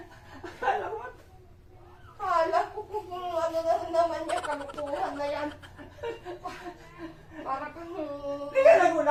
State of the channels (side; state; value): both; identical; correlation 1.00